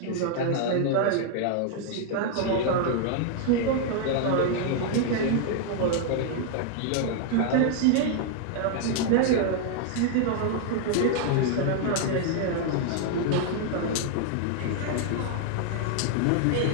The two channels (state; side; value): different; both; correlation 0.00